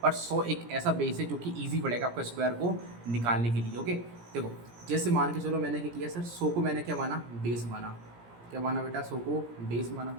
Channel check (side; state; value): left; late; 17 ms